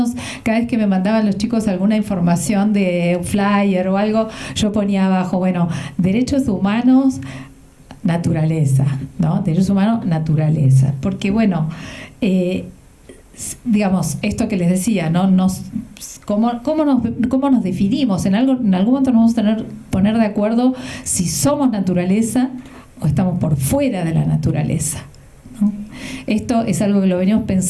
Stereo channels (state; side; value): identical; both; correlation 1.00